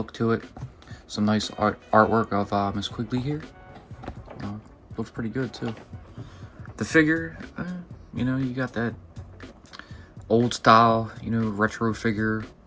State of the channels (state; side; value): identical; both; correlation 1.00